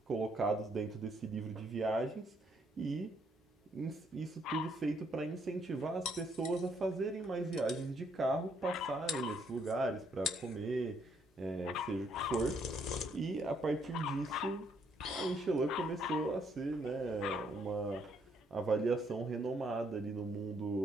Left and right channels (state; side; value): normal; both; correlation 0.70